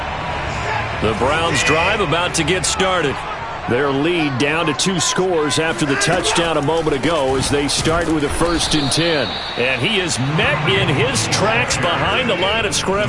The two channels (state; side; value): identical; both; correlation 1.00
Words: The Browns drive about to get started. Their lead down to 2 scores after the touchdown a moment ago as they start with a 1st and 10. And he is met in his tracks behind the line of